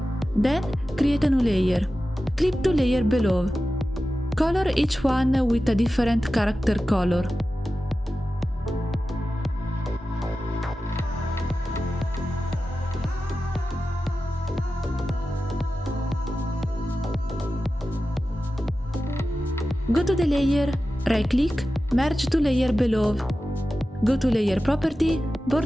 Then create a new layer. Click to layer below. Color each one with a different character color. Go to the layer, right-click, merge to layer below. Go to Layer Property,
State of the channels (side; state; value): both; normal; correlation 0.93